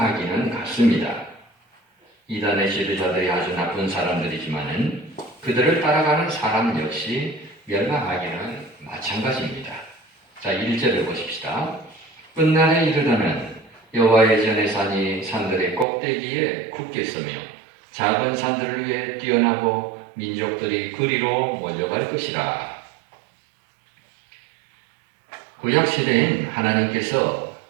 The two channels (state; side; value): drops out; left; at 15.9 s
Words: 같습니다. 이단의 지도자들이 아주 나쁜 사람들이지만은 그들을 따라가는 사람 역시 멸망하기는 마찬가지입니다. 자, 1절을 보십시다. 끝날에 이르다는 여호와의 전의 산이 산들의 꼭대기에 굳게 서며 작은 산들을 위해 뛰어나고 민족들이 그리로 몰려갈 것이라. 구약 시대엔 하나님께서